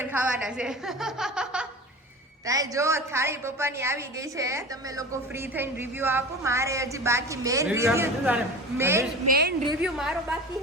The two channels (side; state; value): both; normal; correlation 0.34